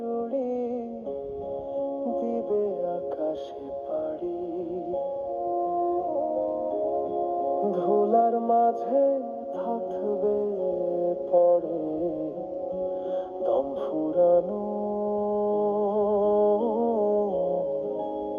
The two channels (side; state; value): both; identical; correlation 1.00